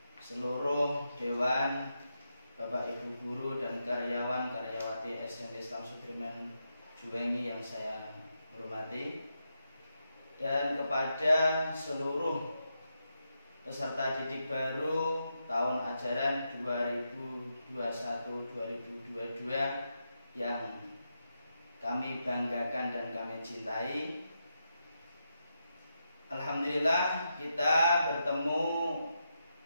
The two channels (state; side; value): inverted; both; correlation -0.85